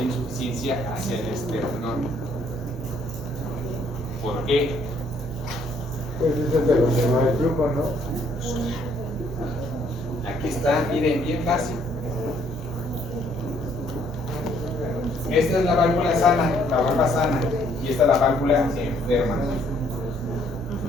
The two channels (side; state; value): right; noise; hum, 15 dB below the sound